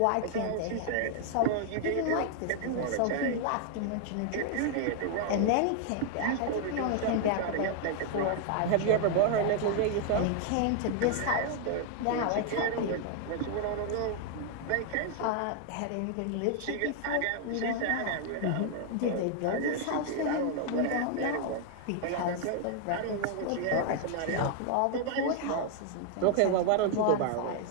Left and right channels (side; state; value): both; different; correlation 0.00